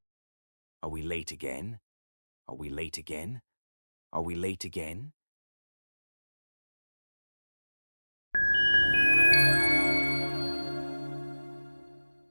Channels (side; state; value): both; inverted; correlation -1.00